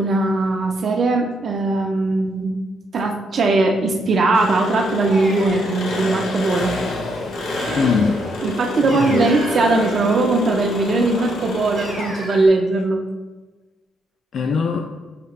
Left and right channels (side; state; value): both; normal; correlation 0.75